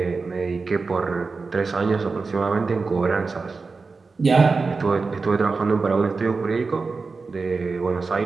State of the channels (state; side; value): quieter; left; 4.3 dB